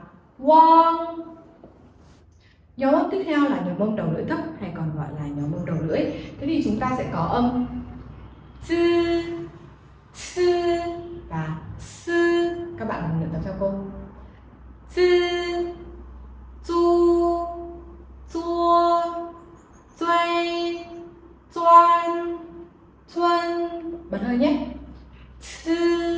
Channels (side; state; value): both; identical; correlation 1.00